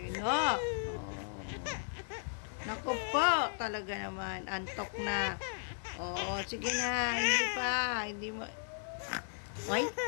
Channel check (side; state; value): right; silent; digital silence